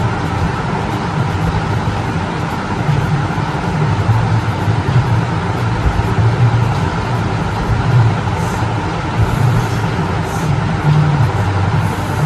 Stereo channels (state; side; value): identical; both; correlation 1.00